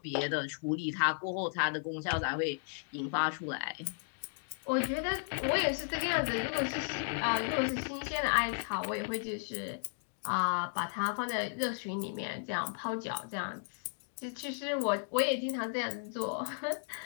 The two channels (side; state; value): right; silent; digital silence